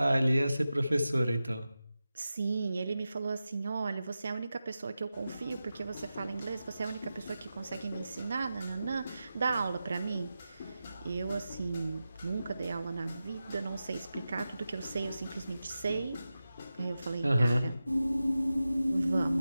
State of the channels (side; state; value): both; inverted; correlation -0.93